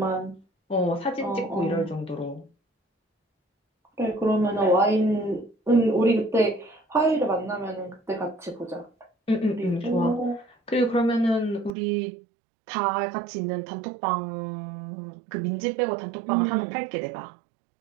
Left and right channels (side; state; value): left; drops out; at 11.7 s